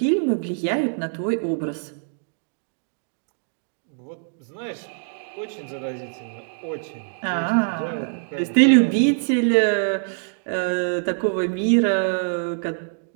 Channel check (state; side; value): silent; left; digital silence